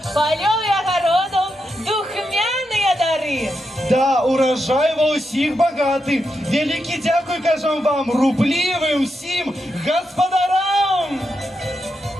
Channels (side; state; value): both; normal; correlation 0.85